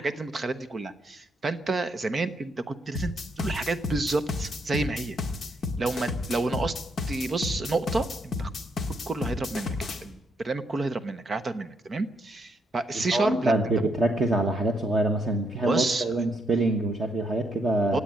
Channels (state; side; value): normal; both; correlation 0.76